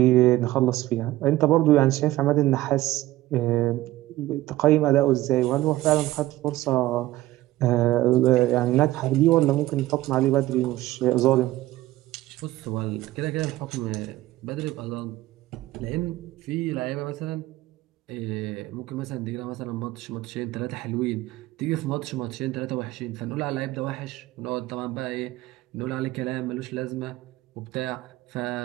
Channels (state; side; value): quieter; left; 16.6 dB